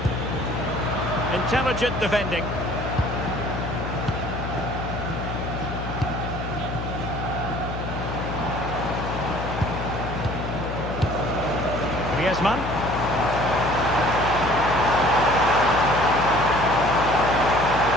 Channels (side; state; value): left; noise; hum, 6 dB below the sound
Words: Intelligent defending. Griezmann.